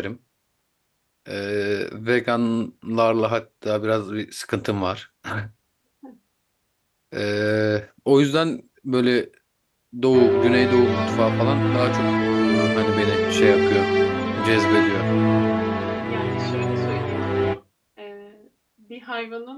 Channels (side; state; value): both; identical; correlation 1.00